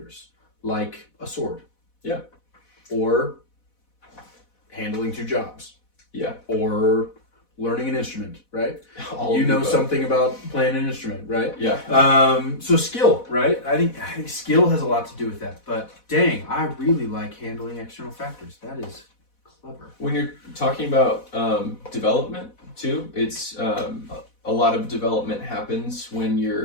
like a sword. Yeah. Or handling 2 jobs. Yeah. Or learning an instrument, right? All you know above. something about playing an instrument, right? Yeah. So skill, right? I think skill has a lot to do with that. But dang, I really like handling external factors. That is clever. When you're talking about development too, it's a lot of development happens when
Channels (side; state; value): right; late; 4.1 ms